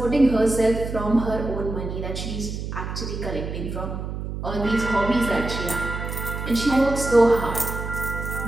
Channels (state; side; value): noise; right; hum, 6 dB below the sound